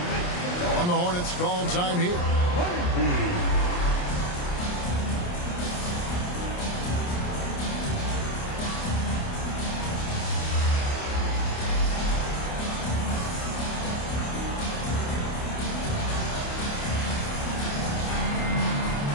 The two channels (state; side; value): late; right; 28 ms